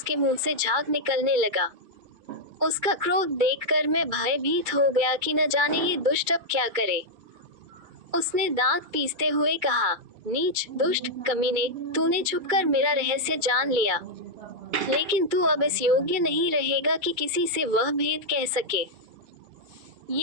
मुंह से झाग निकलने लगा। उसका क्रोध देखकर मैं भयभीत हो गया कि न जाने ये दुष्ट अब क्या करे। उसने दांत पीसते हुए कहा, नीच, दुष्ट, कमीने, तूने छुपकर मेरा रहस्य जान लिया, लेकिन तू अब इस योग्य नहीं रहेगा कि किसी से वह भेद कह सके।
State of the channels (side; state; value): left; late; 2.3 ms